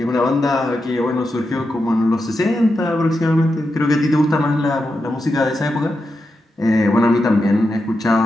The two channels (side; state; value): both; normal; correlation 0.88